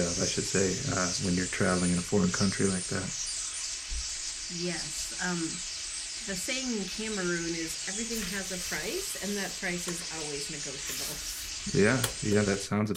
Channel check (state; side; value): identical; both; correlation 1.00